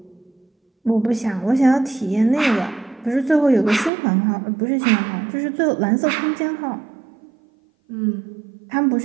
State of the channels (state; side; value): drops out; left; at 3.9 s